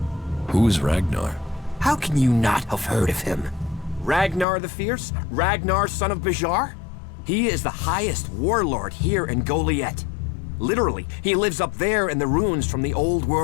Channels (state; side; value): drops out; right; at 4.5 s